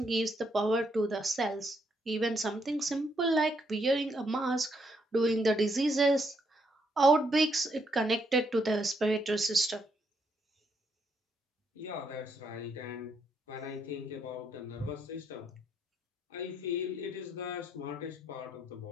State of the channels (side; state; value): both; normal; correlation 0.75